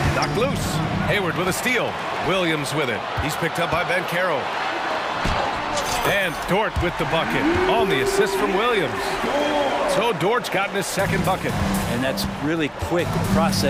Knocked loose. Hayward with a steal. Williams with it. He's picked up by Ben Carroll. And Dort with the bucket on the assist from Williams. So Dort's gotten his second bucket. And that's really quick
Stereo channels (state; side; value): identical; both; correlation 1.00